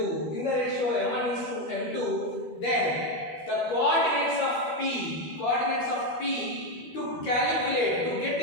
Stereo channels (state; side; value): late; right; 12 ms